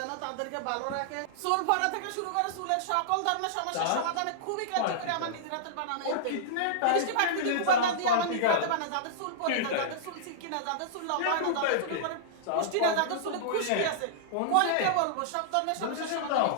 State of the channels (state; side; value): different; both; correlation -0.02